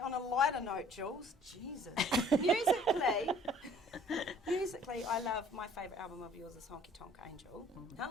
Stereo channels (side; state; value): both; normal; correlation 0.54